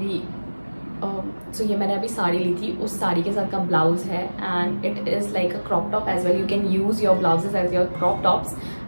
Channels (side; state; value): both; inverted; correlation -1.00